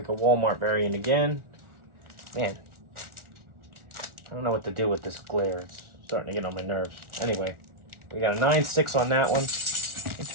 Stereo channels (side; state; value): left; late; 1.4 ms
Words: a Walmart variant again. Man, I don't know what to do with this glare. It's starting to get on my nerves. Anyway, we got a 9.6 on that one. Let me